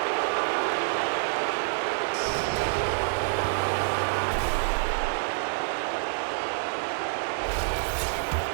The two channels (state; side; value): silent; left; digital silence